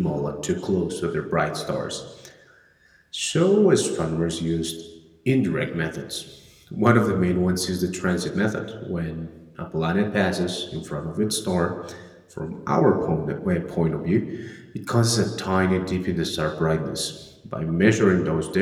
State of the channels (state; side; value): identical; both; correlation 1.00